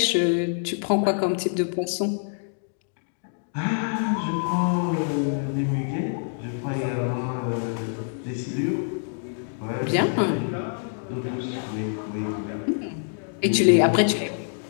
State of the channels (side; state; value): right; silent; digital silence